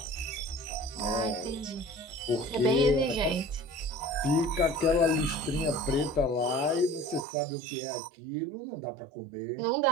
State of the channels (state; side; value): drops out; left; at 7.2 s